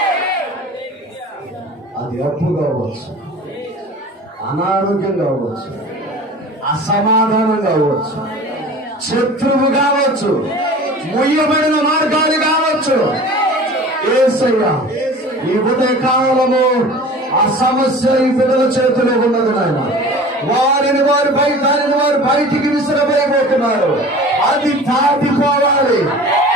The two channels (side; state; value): both; normal; correlation 0.40